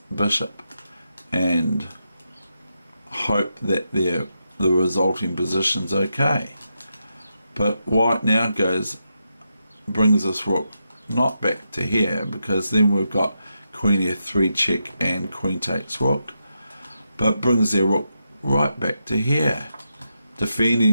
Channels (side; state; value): both; inverted; correlation -0.85